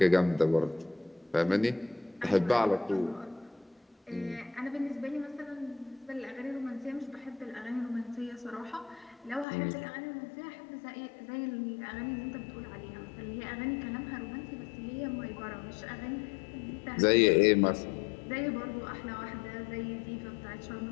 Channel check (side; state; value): right; drops out; at 9.5 s